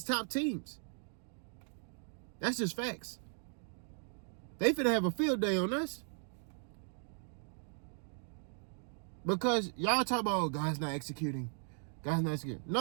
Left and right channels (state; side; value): silent; left; 53 dB below the other